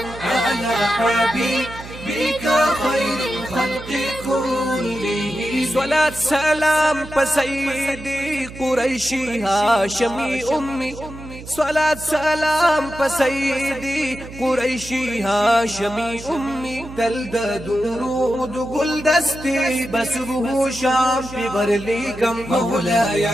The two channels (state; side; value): noise; right; hum, 14 dB below the sound